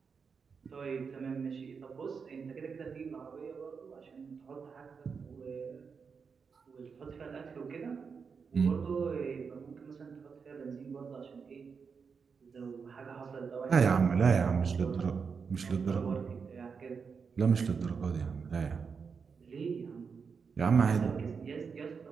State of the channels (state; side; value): quieter; left; 5.7 dB